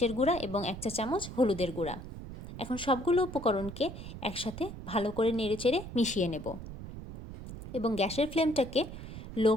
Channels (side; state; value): right; noise; rumble, 11 dB below the sound